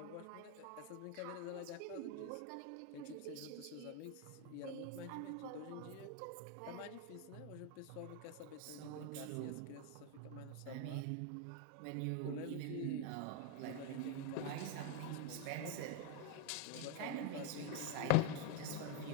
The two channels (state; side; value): different; both; correlation 0.02